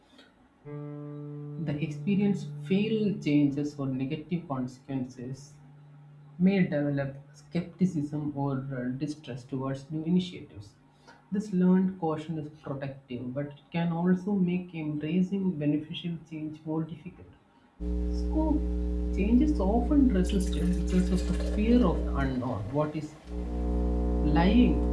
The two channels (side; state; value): both; identical; correlation 1.00